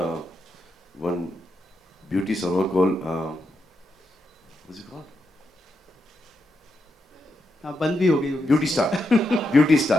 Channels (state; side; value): normal; both; correlation 0.83